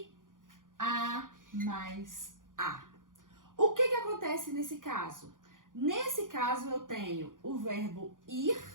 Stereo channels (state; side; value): late; left; 0.89 ms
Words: A mais a. O que acontece nesse caso? Nesse caso eu tenho o verbo ir.